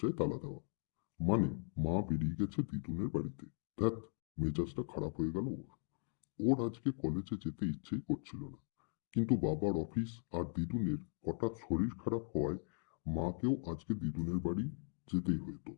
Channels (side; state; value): right; silent; 52 dB below the other